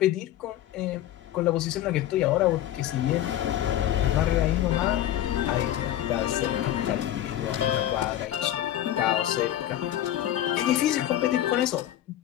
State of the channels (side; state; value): right; quieter; 12.5 dB